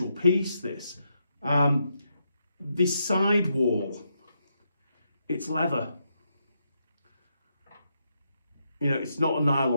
piece, this. The sidewall, it's leather. It's not a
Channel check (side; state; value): both; inverted; correlation -0.81